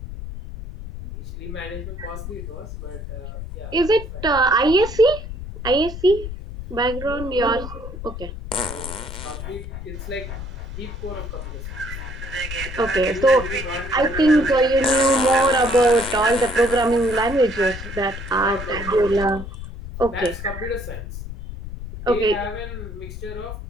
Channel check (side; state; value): left; noise; rumble, 9 dB below the sound